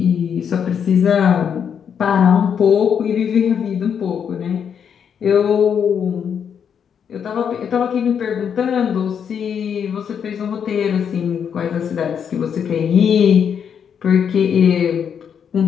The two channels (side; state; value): right; quieter; 7.7 dB